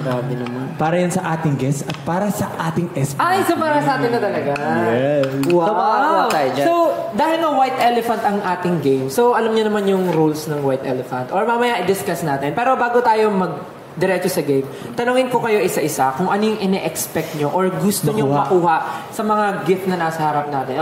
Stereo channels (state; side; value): identical; both; correlation 1.00